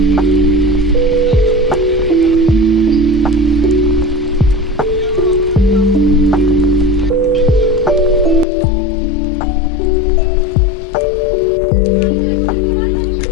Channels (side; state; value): right; drops out; at 8.5 s